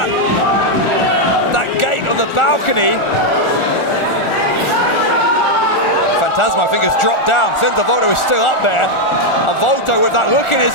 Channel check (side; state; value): right; late; 1.4 ms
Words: gate on the balcony. Phantasmo, I think, has dropped down. Senza Volto is still up there. And Volto with that look in his